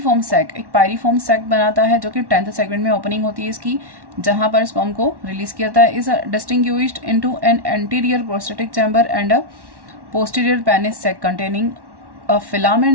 सैक, एक पायरीफॉर्म सैक बनाता है जो कि 10th सेगमेंट में ओपनिंग होती है इसकी, जहां पर स्पर्म को रिलीज किया जाता है। Is distinguished into an anterior prostatic chamber and a posterior penis sac containing a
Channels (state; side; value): late; left; 1.1 ms